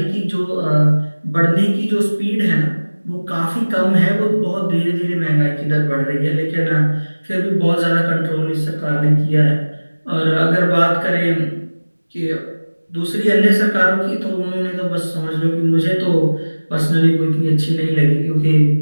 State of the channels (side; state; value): both; inverted; correlation -1.00